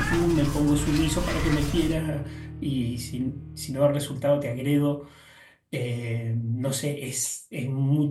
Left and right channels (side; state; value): both; identical; correlation 1.00